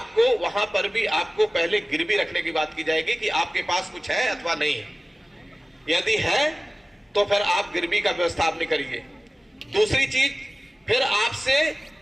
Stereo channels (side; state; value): both; normal; correlation 0.97